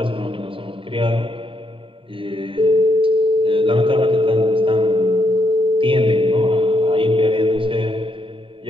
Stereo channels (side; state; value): left; late; 0.25 ms